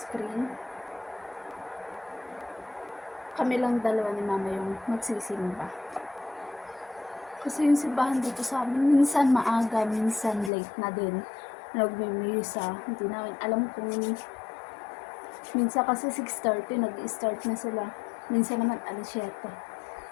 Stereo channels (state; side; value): drops out; right; at 10.5 s